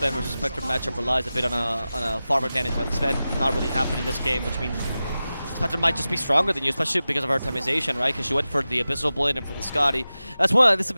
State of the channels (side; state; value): both; inverted; correlation -0.95